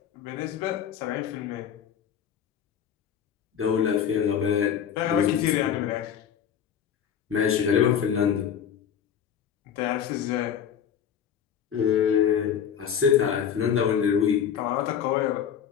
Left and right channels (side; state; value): right; quieter; 8.5 dB